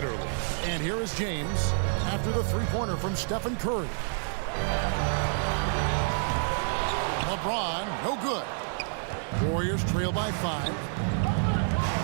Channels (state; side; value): silent; left; digital silence